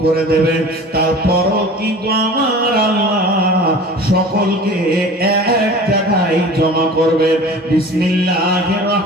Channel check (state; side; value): normal; both; correlation 0.41